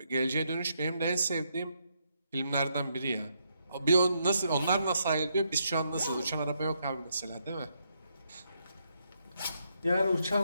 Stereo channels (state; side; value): inverted; both; correlation -0.77